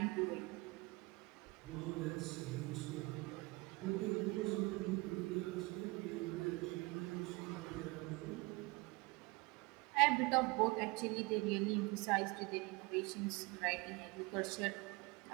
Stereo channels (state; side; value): quieter; left; 24.5 dB